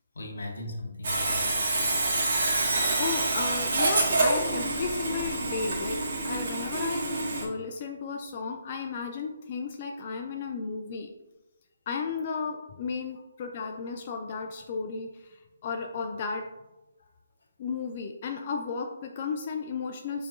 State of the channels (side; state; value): both; inverted; correlation -0.71